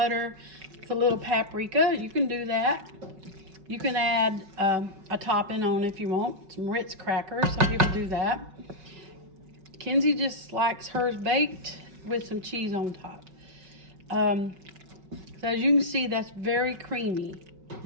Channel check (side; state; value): left; late; 5.3 ms